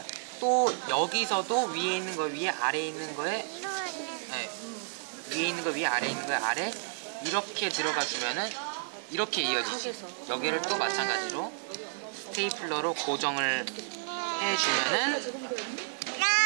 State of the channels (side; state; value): left; silent; digital silence